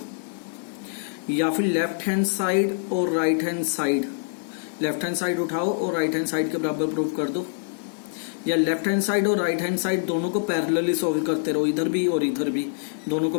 या फिर लेफ्ट हैंड साइड और right hand side, left hand side उठाओ और राइट हैंड साइड के बराबर प्रूव कर दो, या लेफ्ट हैंड साइड और राइट हैंड साइड दोनों को पैरेलली सॉल्व करते रहो, इधर भी और इधर भी दोनों को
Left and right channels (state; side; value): silent; right; 62 dB below the other